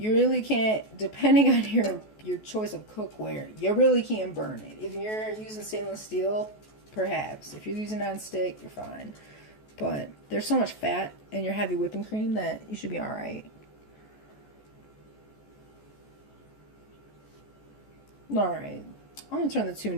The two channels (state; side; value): late; right; 14 ms